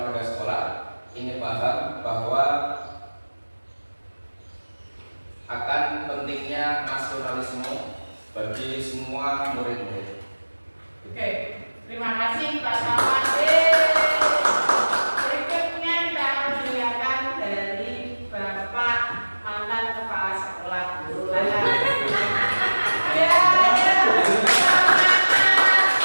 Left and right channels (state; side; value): inverted; both; correlation -1.00